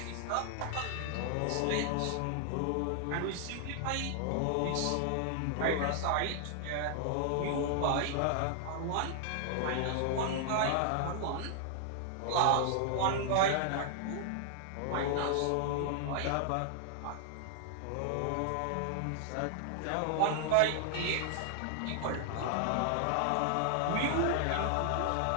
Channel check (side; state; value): both; different; correlation -0.01